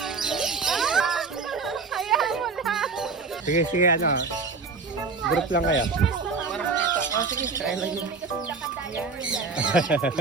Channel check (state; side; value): quieter; left; 4.4 dB